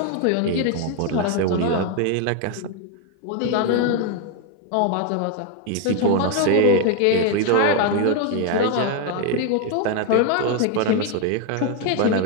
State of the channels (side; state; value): both; different; correlation 0.01